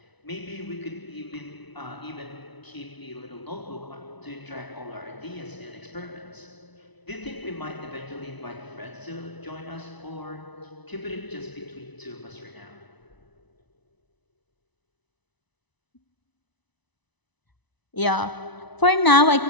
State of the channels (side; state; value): right; late; 1.0 ms